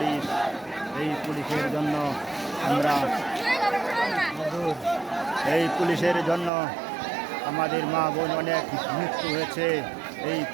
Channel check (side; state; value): left; drops out; at 6.5 s